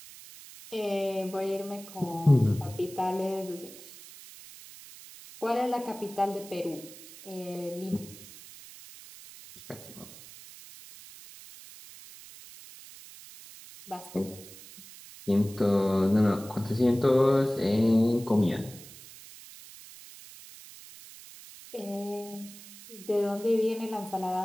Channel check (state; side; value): noise; right; hiss, 17 dB below the sound